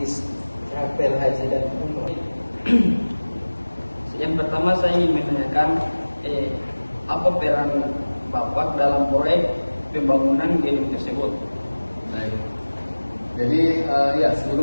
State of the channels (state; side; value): inverted; both; correlation -1.00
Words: Rapel Haji dan Umroh. Yang pertama saya ingin menanyakan apa peran Bapak dalam proyek pembangunan gedung tersebut? Baik. Jadi